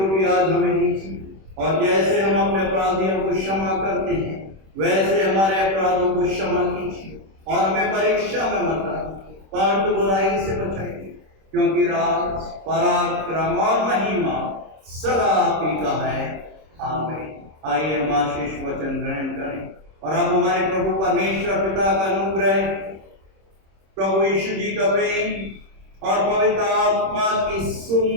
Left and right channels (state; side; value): late; left; 26 ms